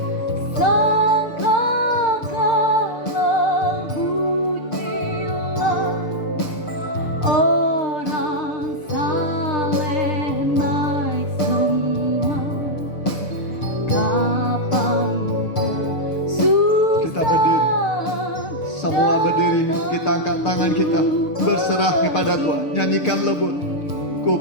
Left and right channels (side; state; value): right; late; 6.6 ms